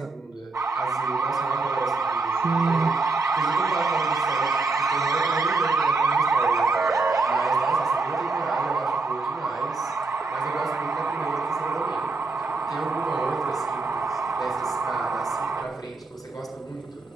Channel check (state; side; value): quieter; left; 3.7 dB